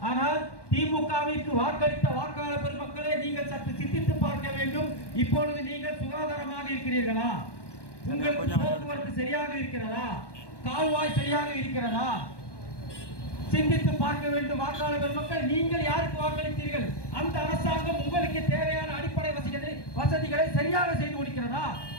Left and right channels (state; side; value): late; right; 1.2 ms